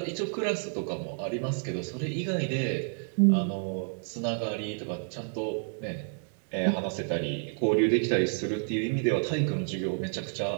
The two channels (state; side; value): silent; left; 58 dB below the other